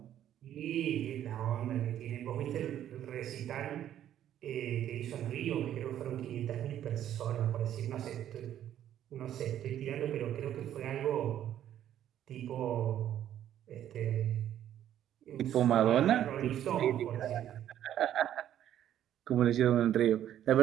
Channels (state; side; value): quieter; left; 11.1 dB